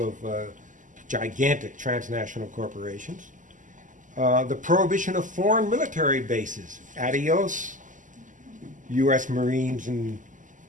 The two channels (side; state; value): left; late; 0.37 ms